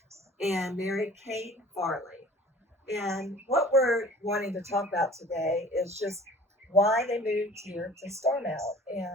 and Mary Kate Farley. And what we're wanting to talk about today is just why they moved here to Starmount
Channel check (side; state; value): both; normal; correlation 0.47